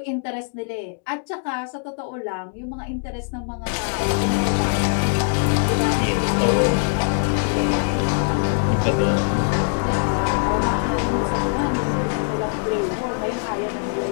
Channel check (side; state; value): right; silent; digital silence